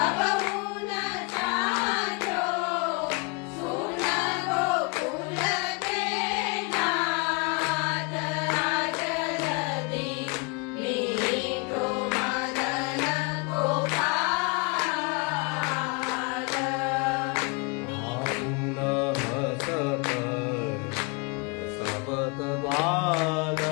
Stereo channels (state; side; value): quieter; right; 30.4 dB